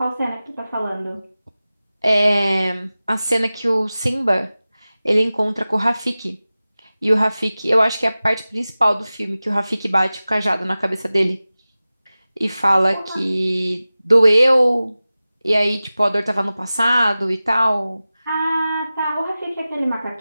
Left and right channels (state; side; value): inverted; both; correlation -0.96